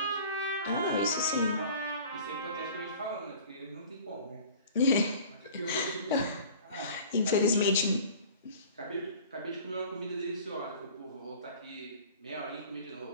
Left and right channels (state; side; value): inverted; both; correlation -0.45